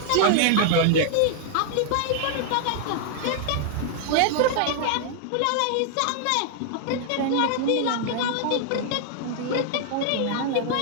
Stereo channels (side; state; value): both; different; correlation 0.00